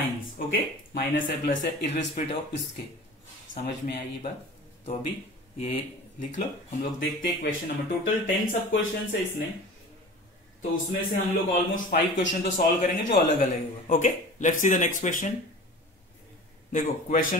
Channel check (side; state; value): both; normal; correlation 0.38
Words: ओके, माइनस है प्लस है, इररेस्पेक्टिव ऑफ इसके। समझ में आई ये बात? तो अभी ये लिख लो, हम लोग देखते हैं क्वेश्चन नंबर। टोटल 10 सब क्वेश्चन है इसमें, तो उसमें से हम लोग ऑलमोस्ट 5 क्वेश्चन तो सॉल्व करेंगे जो अलग अलग होगा। Okay, let's see the next question. देखो क्वेश्चन